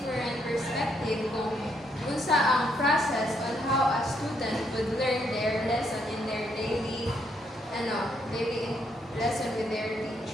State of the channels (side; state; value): both; normal; correlation 0.74